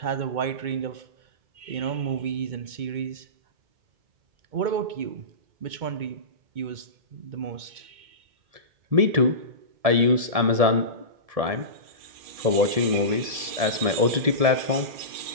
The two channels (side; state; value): left; late; 1.7 ms